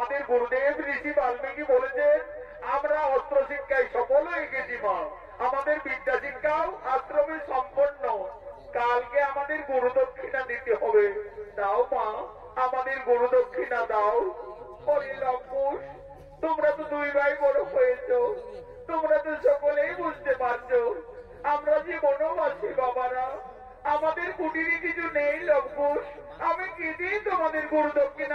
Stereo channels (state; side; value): identical; both; correlation 1.00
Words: গুরুদেব ঋষি বাল্মীকি বলেছেন আমরা অস্ত্র শিক্ষায় সফল হয়ে গেছি মা। আমাদের বিদ্যা শিক্ষাও আশ্রমে সম্পন্ন। কালকে আমাদের গুরু দক্ষিণা দিতে হবে। দাও মা, আমাদের গুরু দক্ষিণা দাও। লম্পুর, তোমরা তো দুই ভাই বড় হয়েছ, তোমরা তো সকলেই বুঝতে পারছো আমরা যে বনবাসী বাবারা, আমাদের কুটিরে কিছু নেই লম্পুর। আমি কি দিয়ে তোমাদের গুরু